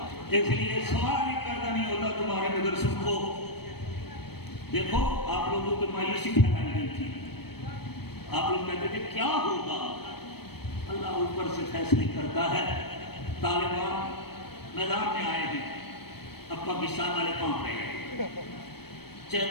اس لیے سوال ہی پیدا نہیں ہوتا تمہارے مدرسوں کو. دیکھو آپ لوگوں کو مایوسی پھیلائی گئی تھی، آپ لوگ کہتے تھے کیا ہوگا. اللہ اوپر سے فیصلے کرتا ہے. طالبان میدان میں آئے ہیں، اب پاکستان والے کام رہے ہیں،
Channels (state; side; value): late; right; 0.97 ms